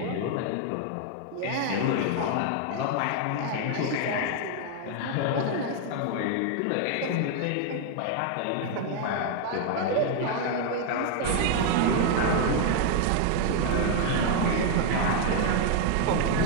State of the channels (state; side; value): different; both; correlation 0.00